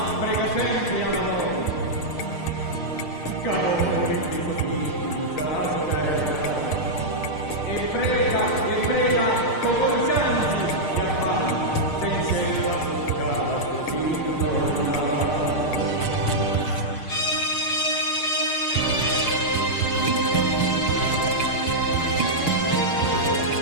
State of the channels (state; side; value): late; right; 6.6 ms